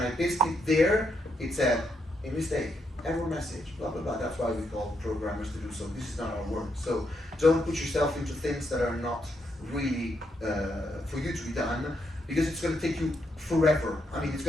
I pasted it there, it said, a mistake, error message, blah, blah, blah. That's why we call programmers to do so. This is not our work. So don't put yourself into things that are not really for you to be done, because it's going to take you forever. I mean, it's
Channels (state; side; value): normal; both; correlation 0.79